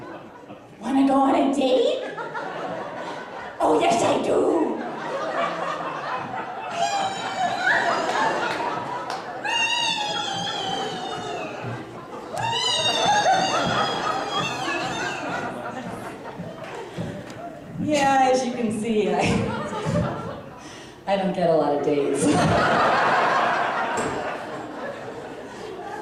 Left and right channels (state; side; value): identical; both; correlation 1.00